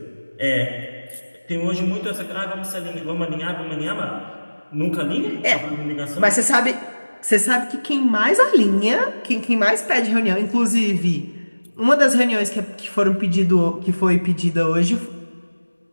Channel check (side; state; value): both; inverted; correlation -1.00